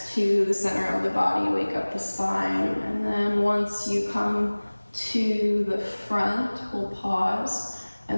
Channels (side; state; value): both; inverted; correlation -1.00